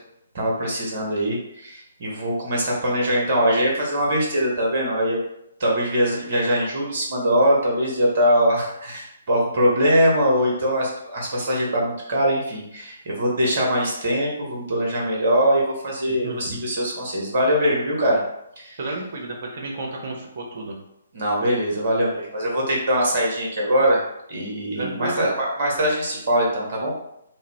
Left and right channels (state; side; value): inverted; both; correlation -0.68